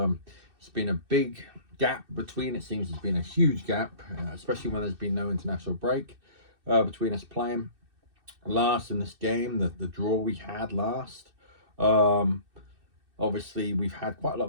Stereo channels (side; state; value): left; late; 2.6 ms